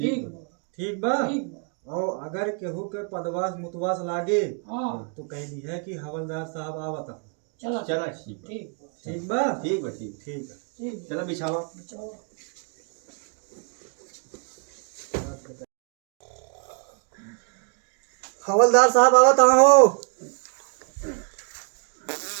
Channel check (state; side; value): quieter; left; 39.4 dB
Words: ठीक बा। ठीक बा। और अगर केहू के पदवास मुतवास लागे हाँ तो कह दी है कि हवलदार साहब आवता। चलो चला ठीक बा। ठीक बा। ठीक बा। ठीक बा ठीक। ठीक है। ठीक चलो बिछावा। बिछाओ। हवलदार साहब आवत हो।